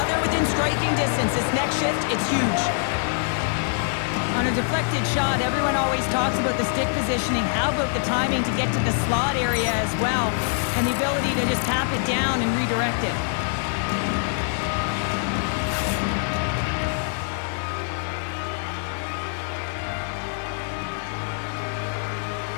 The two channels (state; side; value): silent; right; 59 dB below the other